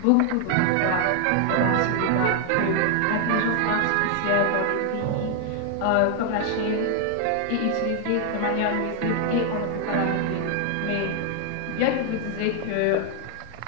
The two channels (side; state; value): both; different; correlation 0.00